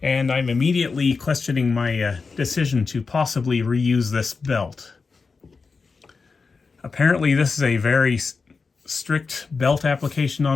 and I'm immediately questioning my decision to possibly reuse this belt. Apparently this is a very strict belt application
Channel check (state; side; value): quieter; right; 4.6 dB